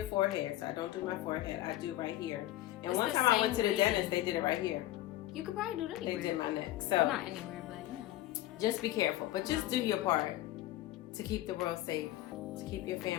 forehead. So I don't do my forehead. I do right here. And It's one the time I went to the same dentist, they did it right here. You could probably do it anywhere. They did my neck. So Well, not anywhere, but you know. just be careful. But just No. do your part to keep the world safe, to keep your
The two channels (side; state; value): right; quieter; 15.5 dB